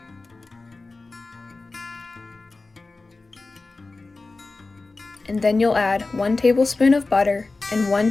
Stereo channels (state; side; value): quieter; right; 3.5 dB